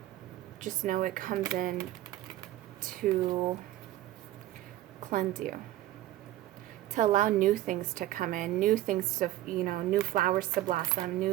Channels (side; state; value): left; quieter; 15.0 dB